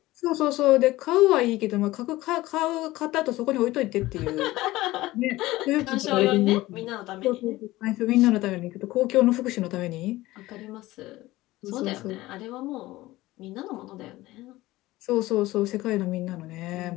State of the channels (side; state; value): right; quieter; 18.0 dB